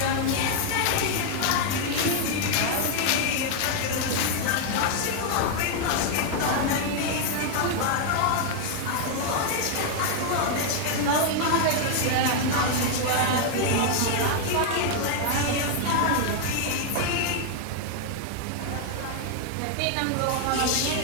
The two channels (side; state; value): both; different; correlation 0.00